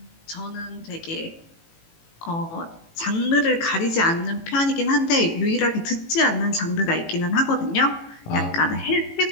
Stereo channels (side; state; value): right; late; 18 ms